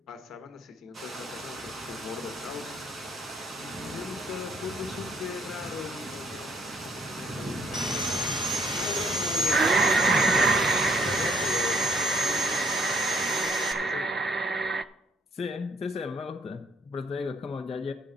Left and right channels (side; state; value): both; normal; correlation 0.67